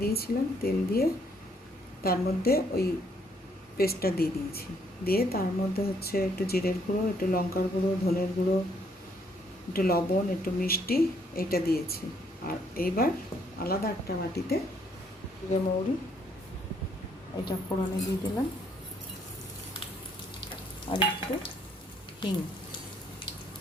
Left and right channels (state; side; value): normal; both; correlation 0.68